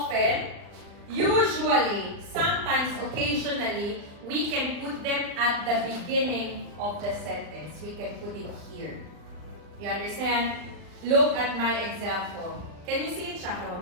usually, sometimes, occasionally, we can put them at the beginning of the sentence. We can put it here. You understand? Look at my example. Can you see it,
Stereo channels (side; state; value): left; late; 39 ms